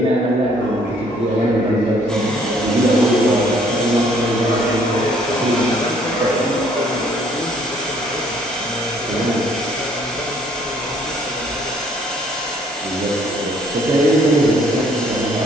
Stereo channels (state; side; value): normal; both; correlation 0.62